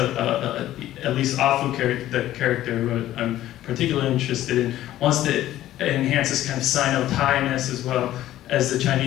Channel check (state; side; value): quieter; right; 13.8 dB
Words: least Afu, the character who I'm particularly interested in, wants to enhance this kind of Sino-Thai-ness as well as the